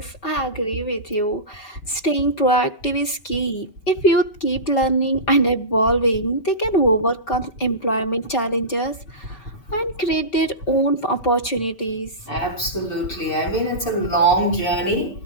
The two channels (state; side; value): late; right; 5.2 ms